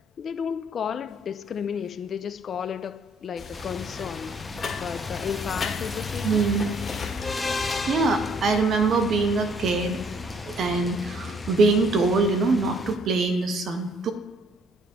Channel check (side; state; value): both; normal; correlation 0.63